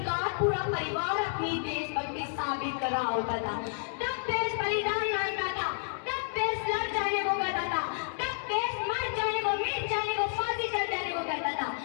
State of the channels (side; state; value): right; silent; digital silence